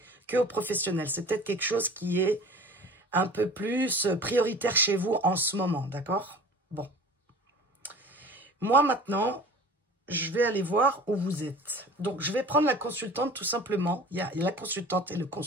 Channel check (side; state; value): both; normal; correlation 0.42